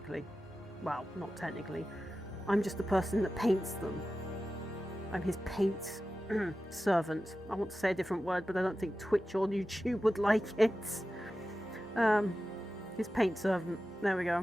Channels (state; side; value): normal; both; correlation 0.93